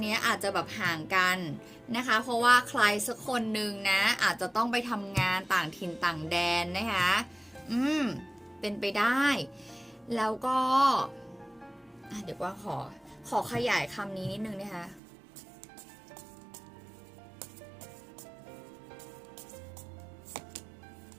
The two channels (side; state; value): left; drops out; at 15.0 s